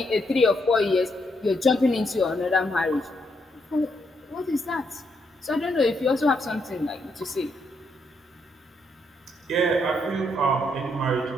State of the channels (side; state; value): both; normal; correlation 0.77